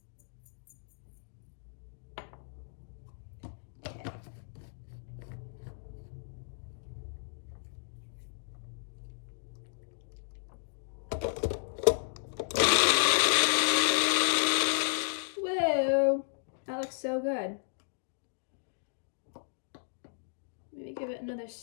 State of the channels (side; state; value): right; silent; digital silence